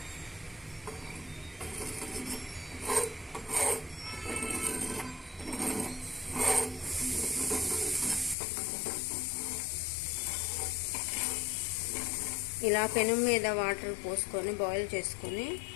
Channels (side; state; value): right; drops out; at 8.3 s